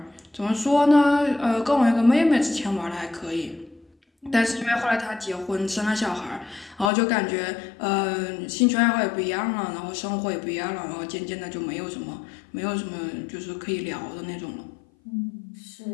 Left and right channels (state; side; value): drops out; right; at 6.9 s